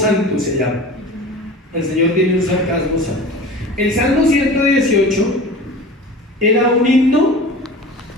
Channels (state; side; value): normal; both; correlation 0.37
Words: se llama. El Señor tiene un sarcasmo santo. El Salmo 118 era un himno